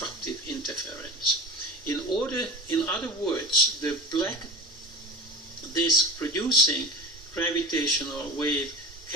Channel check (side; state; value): both; normal; correlation 0.34